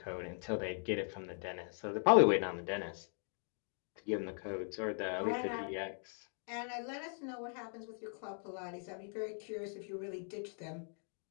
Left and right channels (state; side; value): silent; right; 51 dB below the other